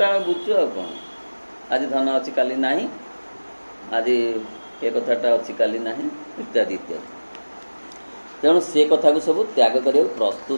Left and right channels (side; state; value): both; inverted; correlation -1.00